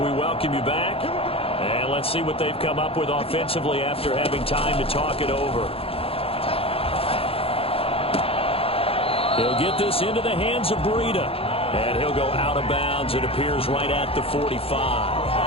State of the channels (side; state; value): right; late; 0.27 ms